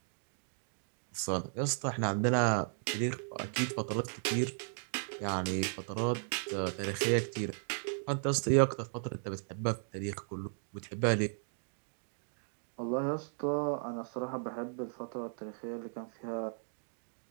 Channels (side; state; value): left; silent; digital silence